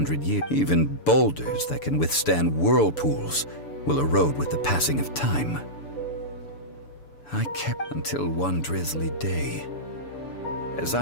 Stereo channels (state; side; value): late; right; 6.9 ms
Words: years. Even boulders that can withstand whirlpools will erode with the passing of time. I kept until one drizzly day. As